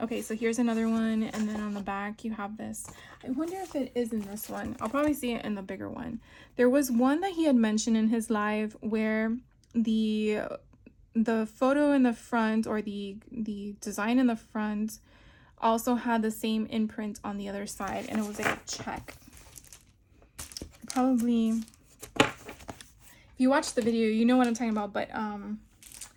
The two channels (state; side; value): identical; both; correlation 1.00